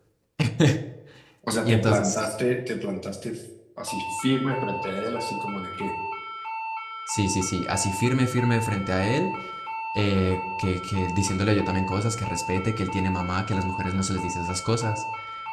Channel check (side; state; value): both; identical; correlation 1.00